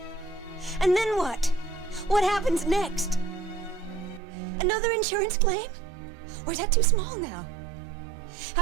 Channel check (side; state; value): left; drops out; at 4.2 s